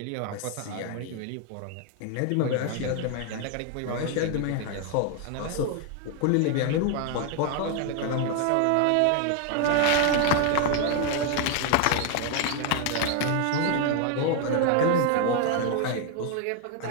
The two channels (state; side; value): different; both; correlation 0.00